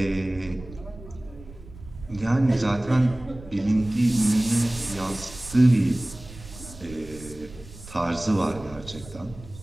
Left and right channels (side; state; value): right; noise; rumble, 17 dB below the sound